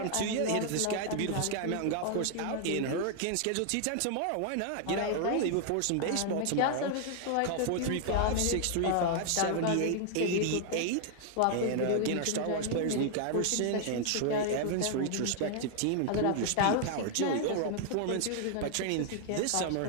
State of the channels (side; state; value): both; different; correlation 0.00